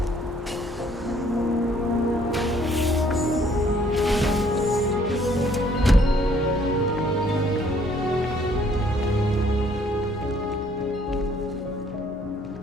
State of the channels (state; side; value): normal; both; correlation 0.63